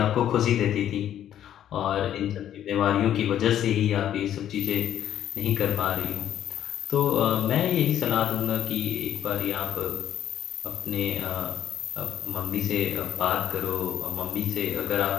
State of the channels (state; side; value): quieter; right; 10.9 dB